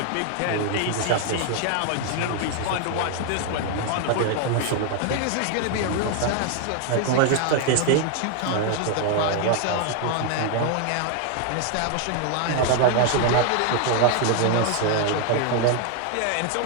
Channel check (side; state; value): both; different; correlation 0.00